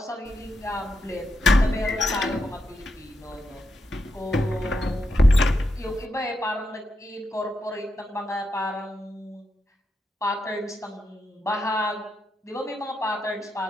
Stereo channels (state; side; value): normal; both; correlation 0.85